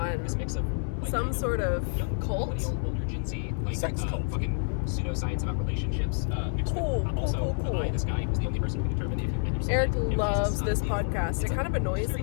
some sort of cult. Sex cult. Fucking pseudoscience about relationships. Cool. This guy who's the only person who can determine if you've been Eric loves this podcast. It kind of annoys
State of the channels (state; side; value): silent; right; 59 dB below the other